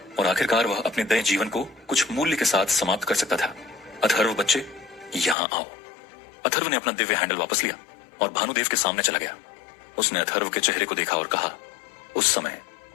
और आखिरकार वह अपने नए जीवन को कुछ मूल्य के साथ समाप्त कर सकता था। अथर्व बच्चे, यहाँ आओ। अथर्व ने अपना दिव्य हैंडल वापस लिया और भानुदेव के सामने चला गया। उसने अथर्व के चेहरे को देखा और कहा, उस समय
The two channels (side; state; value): right; drops out; at 5.4 s